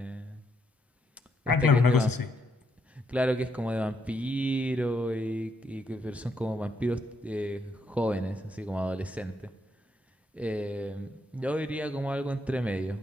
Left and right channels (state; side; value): normal; both; correlation 0.76